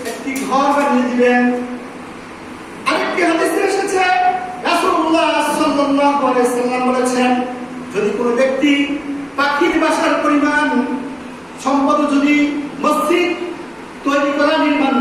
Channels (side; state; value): both; identical; correlation 1.00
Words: একটি ঘর বানিয়ে দিবেন। আরেকটি হাদিসে এসেছে রাসূলুল্লাহ সাল্লাল্লাহু আলাইহি ওয়াসাল্লাম বলেছেন যদি কোনো ব্যক্তি পাখির বাসার পরিমাণ সম্পদ যদি মসজিদ তৈরি করা নির্মাণ